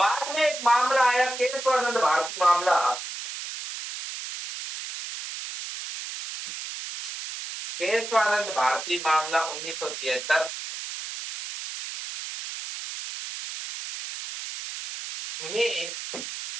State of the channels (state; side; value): noise; right; hiss, 8 dB below the sound